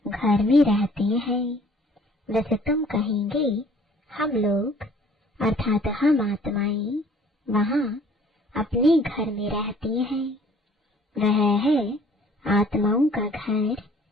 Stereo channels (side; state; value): both; normal; correlation 0.55